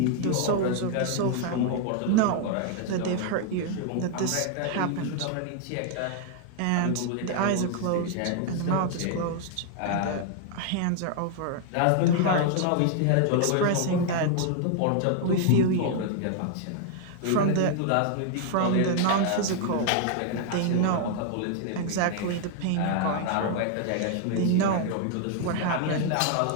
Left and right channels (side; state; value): both; different; correlation 0.00